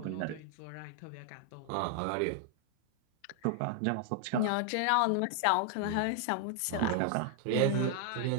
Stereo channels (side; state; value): both; different; correlation 0.00